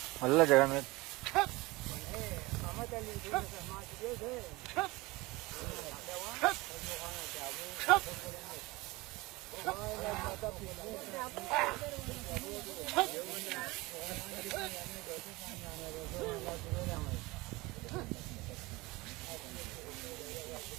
알라 제가 하면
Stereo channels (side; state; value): left; quieter; 22.3 dB